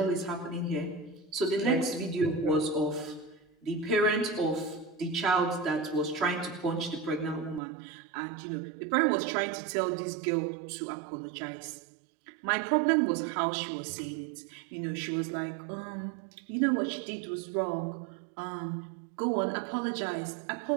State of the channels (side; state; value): left; drops out; at 7.6 s